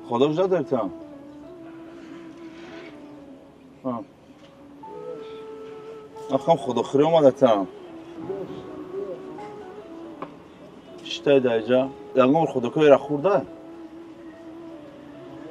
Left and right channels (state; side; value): identical; both; correlation 1.00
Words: خدا کجا دارتم آخام خدا خیلی اومدتم شتای دایجا دنگام خدا که را خورده